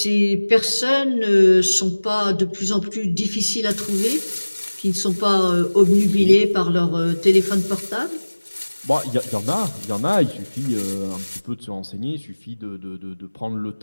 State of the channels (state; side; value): inverted; both; correlation -1.00